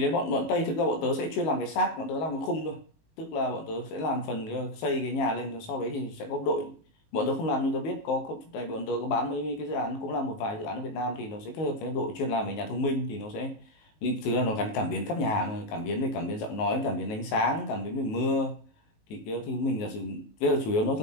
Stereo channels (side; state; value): right; late; 19 ms